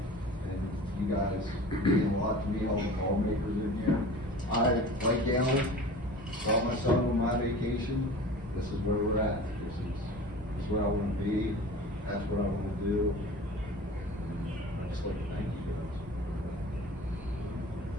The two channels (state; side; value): normal; both; correlation 0.39